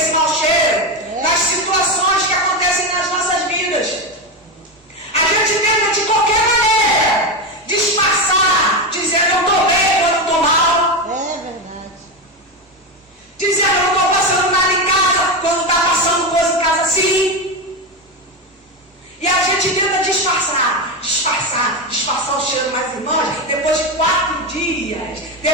mau cheiro, das situações que acontecem nas nossas vidas. A gente tenta de qualquer maneira disfarçar, dizendo eu estou bem quando eu estou mal. É verdade. Dizendo eu não estou passando nada em casa quando está passando coisa em casa sim. E a gente tenta disfarçar o cheiro. Mas irmãos, depois de 4 dias,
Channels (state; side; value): normal; both; correlation 0.14